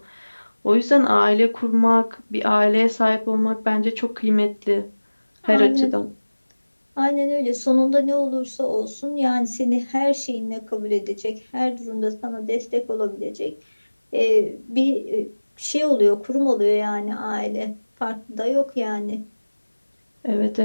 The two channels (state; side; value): inverted; both; correlation -1.00